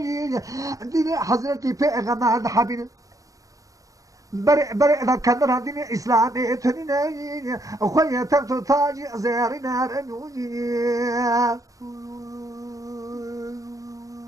ديني حضرتي بيغمار حبيني برئ ذا كدر هذين إسلامي تنين أخويا تبتو تاجي زيارنا رنوني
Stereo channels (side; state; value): left; late; 0.16 ms